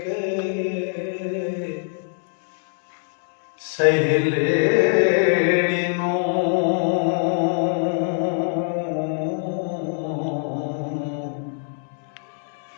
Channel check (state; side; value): silent; right; 63 dB below the other